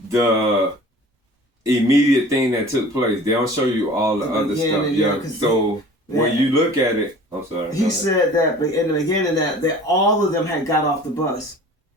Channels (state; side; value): normal; both; correlation 0.45